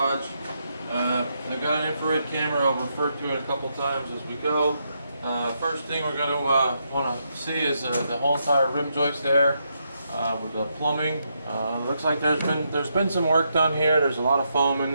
I've got an infrared camera, I'll refer to it a couple times as we go. First thing we're going to want to see is the whole entire rim joist there with the plumbing. Looks like there's been some work done here. There's a lot of foam in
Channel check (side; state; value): both; inverted; correlation -0.80